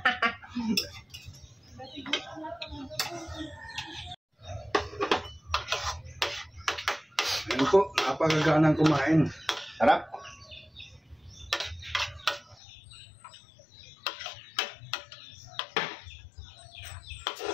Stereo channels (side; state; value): right; drops out; at 12.6 s